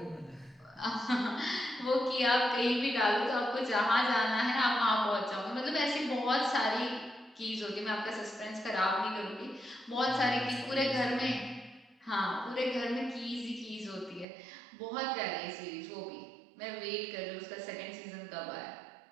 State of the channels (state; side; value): drops out; left; at 14.2 s